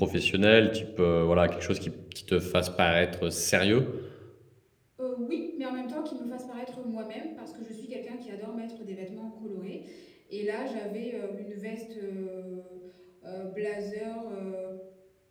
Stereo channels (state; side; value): identical; both; correlation 1.00